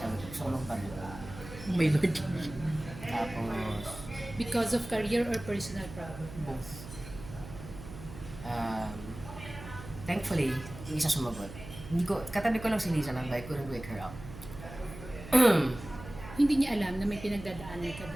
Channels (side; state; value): right; noise; hum, 13 dB below the sound